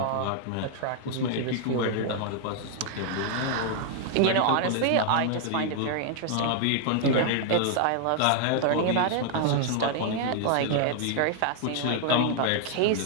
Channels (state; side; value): different; both; correlation 0.00